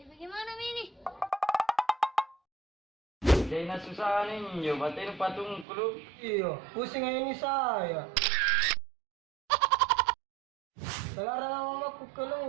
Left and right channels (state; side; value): drops out; left; at 5.7 s